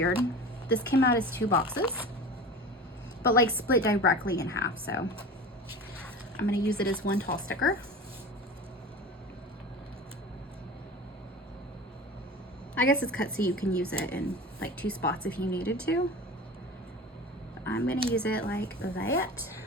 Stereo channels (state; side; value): normal; both; correlation 0.34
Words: This came out as 2 boxes, but like split directly in half. So I'm gonna use it as 1 tall sticker. I guess it's cut so you can use it in like 2 spots if you needed to. But I'm gonna use it like that.